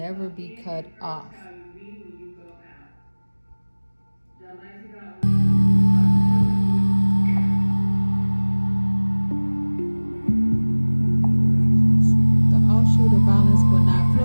be cut off. The offshoot of violence will not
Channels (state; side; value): inverted; both; correlation -1.00